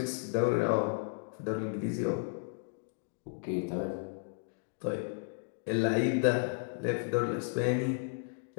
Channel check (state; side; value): silent; right; digital silence